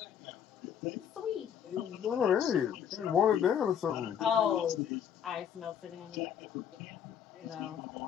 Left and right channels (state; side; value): quieter; right; 8.7 dB